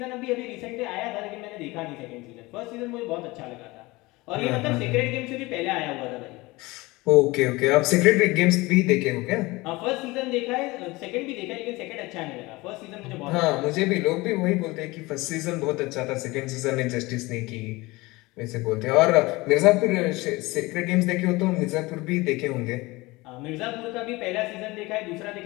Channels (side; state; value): right; quieter; 22.0 dB